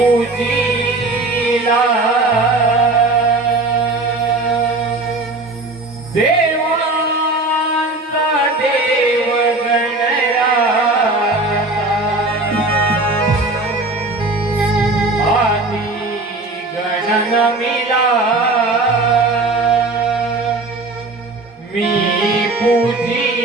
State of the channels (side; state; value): left; quieter; 3.1 dB